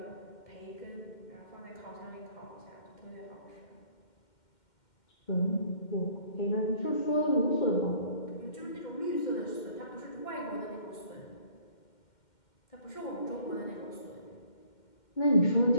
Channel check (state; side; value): late; right; 2.1 ms